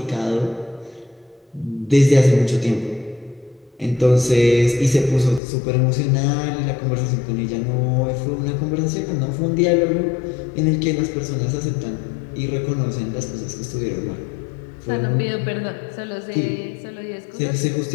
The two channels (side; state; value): right; drops out; at 5.4 s